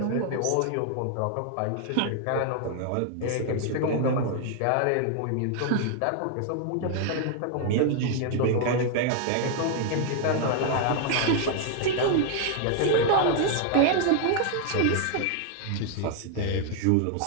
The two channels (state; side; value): different; both; correlation 0.00